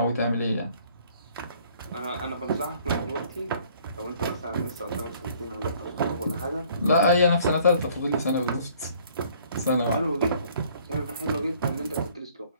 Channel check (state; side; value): inverted; both; correlation -0.59